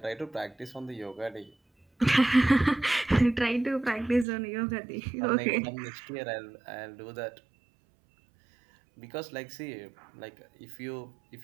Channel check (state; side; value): drops out; left; at 4.2 s